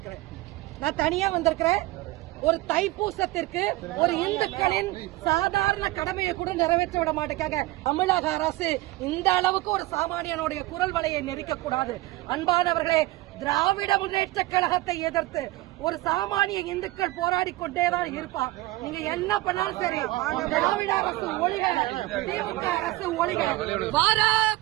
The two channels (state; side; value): quieter; left; 18.9 dB